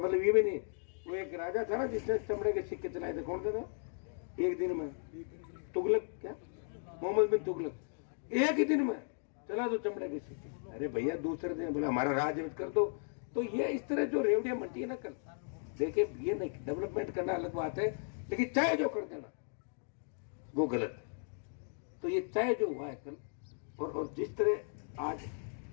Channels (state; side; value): silent; right; 54 dB below the other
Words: ये भी नहीं। वो एक राजा था ना जिसने चमड़े के सिक्के चलाए थे, कौन थे, एक दिन में तुगलक, क्या मोहम्मद बिन तुगलक, एक ही दिन में चला दो चमड़े के सिक्के। अरे भैया दूसरे दिन बोला हमारा राज कर दो। तो ये इस तरह जो रेवड़ियां मंटी है ना, कल देखिए ये नहीं, डेवलपमेंट करना अलग बात है, लेकिन चाहे जो कर देना वो गलत है। तो ये चाहे जो हुआ है कल, और जिस तरह आज